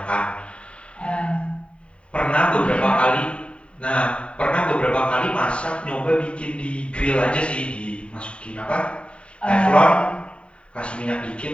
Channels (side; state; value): right; late; 0.059 ms